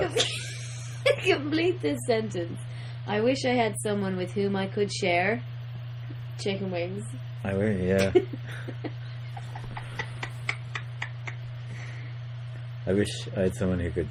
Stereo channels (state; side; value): identical; both; correlation 1.00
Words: Complete this sentence. I wish I had someone with whom I could share chicken wings. I will, yeah. I wish I had someone who